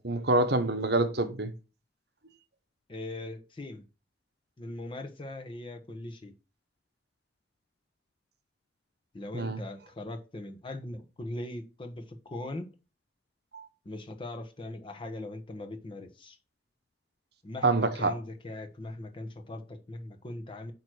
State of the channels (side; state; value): both; normal; correlation 0.06